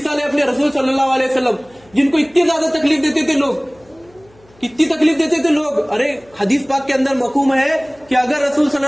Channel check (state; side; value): noise; left; hum, 30 dB below the sound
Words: है अपने रसूल सल्लल्लाहु अलैहि वसल्लम, जिनको इतनी ज्यादा तकलीफ देते थे लोग, कितनी तकलीफ देते थे लोग। अरे हदीस पाक के अंदर मकूम है कि अगर रसूल